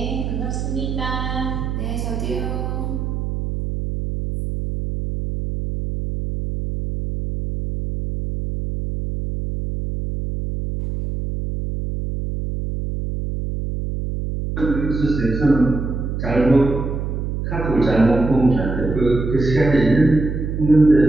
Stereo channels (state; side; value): noise; right; hum, 4 dB below the sound